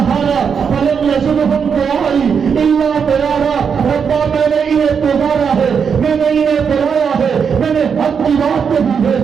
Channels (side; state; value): left; quieter; 6.6 dB